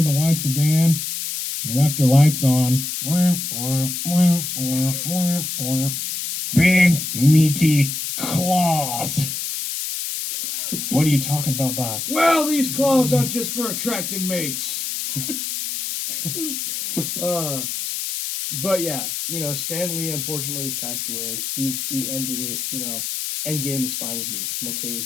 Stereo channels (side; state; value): left; noise; hiss, 4 dB below the sound